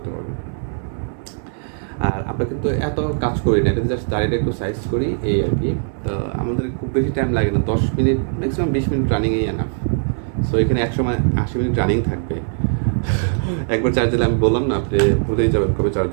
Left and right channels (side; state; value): left; silent; 66 dB below the other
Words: পারবেন। আর আমরা কিন্তু এত কাজ করি না, এটা জাস্ট দাঁড়িয়ে একটু সাইজ করি, এই আর কি। তো আমাদের খুব বেশি টাইম লাগে না, 10 মিনিট, ম্যাক্সিমাম 20 মিনিট রানিংই এনাফ। সো এখানে 180 মিনিট রানিং থাকবে। একবার চার্জ দিলে আমি বললাম না, আপনি ভুলেই যাবেন কবে চার্জ